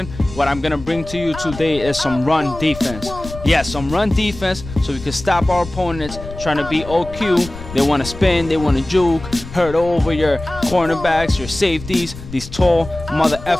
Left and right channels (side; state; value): left; noise; rumble, 13 dB below the sound